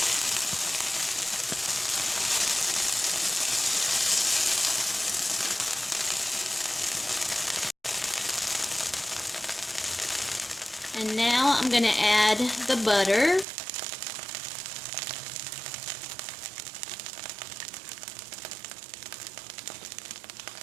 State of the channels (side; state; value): left; drops out; at 13.5 s